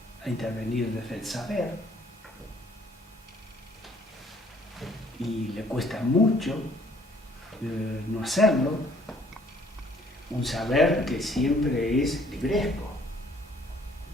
a intervenir desde el saber y le cuesta mucho no hacerlo, un saber que siempre es libresco,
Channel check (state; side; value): normal; both; correlation 0.60